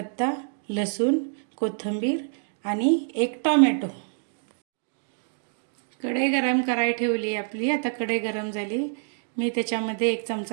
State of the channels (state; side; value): silent; left; digital silence